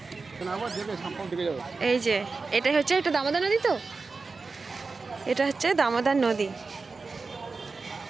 এই যে এটাই হচ্ছে, এটা দামোদর নদী, তো এটা হচ্ছে দামোদর নদী।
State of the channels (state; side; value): quieter; left; 4.2 dB